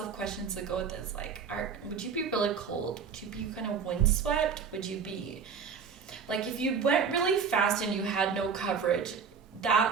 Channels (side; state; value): left; quieter; 6.3 dB